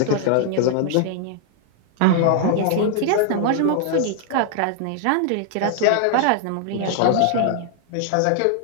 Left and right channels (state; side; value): different; both; correlation -0.01